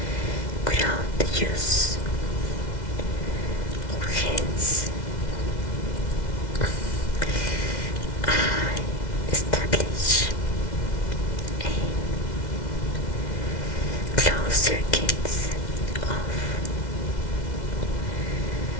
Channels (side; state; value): right; late; 2.0 ms